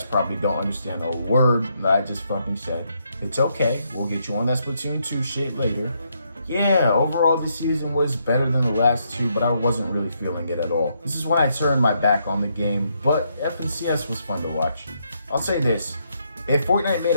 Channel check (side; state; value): both; inverted; correlation -0.76